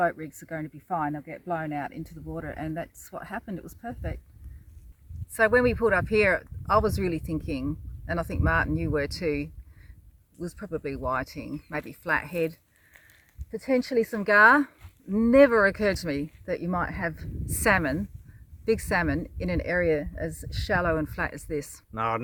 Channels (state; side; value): identical; both; correlation 1.00